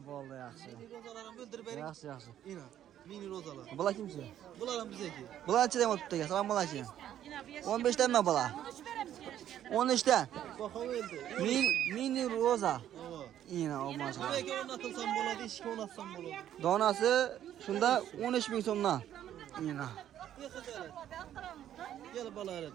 bo'ldi, yaxshi. Rozalarni bildirib bering. Yaxshi, yaxshi. Ina, mini rozalar. Bular kimchi? Bular ham bizniki. Bularchi ham o'tibdi. Assalomu alaykum. 15 danmi bular? 13 dan. Baho o'ldi. Mini roza. Ava. Ina, maşallah. Nimaga o'rnatilsam bo'ladi, ishga o'rnatsam bo'ladi. Donasi shunda 13 ming so'mdan. Ina. Bexijalat. Gel balalar.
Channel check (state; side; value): quieter; left; 11.1 dB